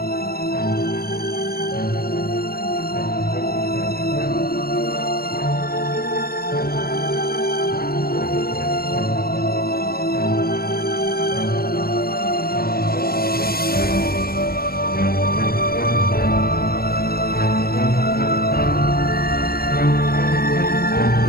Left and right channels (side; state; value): right; late; 0.44 ms